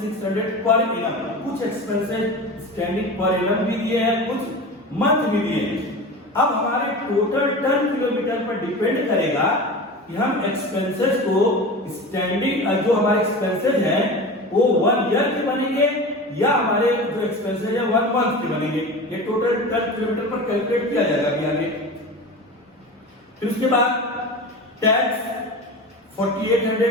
per annum. कुछ एक्सपेंसेस स्टैंडिंग पर एनम भी दिए हैं, कुछ मंथ भी दिए हैं। अब हमारे टोटल टन किलोमीटर पर डिपेंड करेगा कि हम एक्सपेंसेस को स्टैंडिंग, जो हमारे एक्सपेंसेस हैं वो 1 ईयर के बनेंगे या हमारे जो एक्सपेंसेस है 1 मंथ के बनेंगे। ये टोटल टन किलोमीटर पर कैलकुलेट किया जाएगा अभी आगे। फिर उसके बाद tax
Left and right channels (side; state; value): both; normal; correlation 0.31